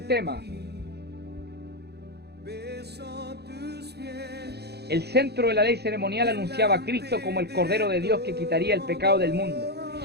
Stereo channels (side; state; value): left; late; 0.48 ms